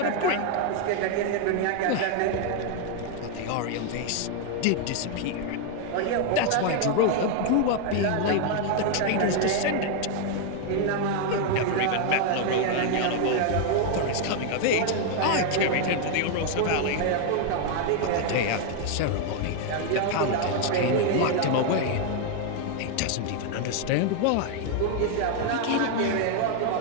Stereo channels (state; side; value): different; both; correlation 0.00